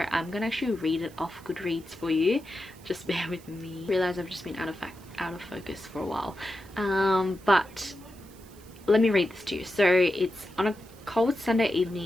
I'm gonna actually read it off Goodreads for you. Just bear with me. I realize I've just been out of focus for a while, but let me read this to you. So it's on a cold Sunday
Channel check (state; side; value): noise; right; hiss, 24 dB below the sound